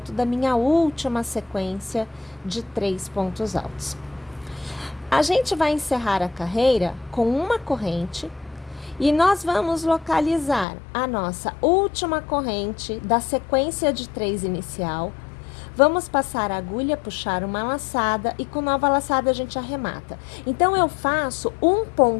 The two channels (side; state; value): right; drops out; at 10.7 s